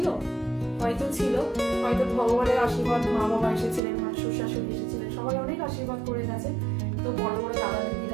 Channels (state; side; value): drops out; left; at 3.8 s